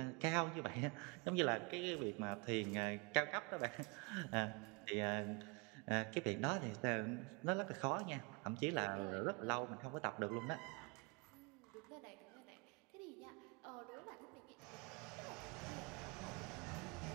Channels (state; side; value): quieter; left; 31.1 dB